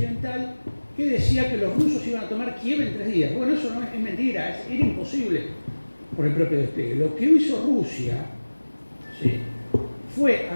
que decía que los rusos iban a tomar Kiev en 3 días. Bueno, eso no es mentira, era imposible por el propio despliegue. Lo que hizo Rusia, ¿sí?, fue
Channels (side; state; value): both; inverted; correlation -1.00